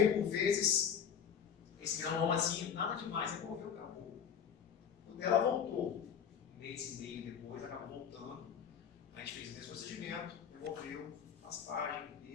por vezes esse granomazinho, nada demais, removeu, acabou. O dela voltou. Um mês e meio depois, acabou voltando. A gente fez o mesmo procedimento, removeu, raspagem,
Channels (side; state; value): right; quieter; 7.8 dB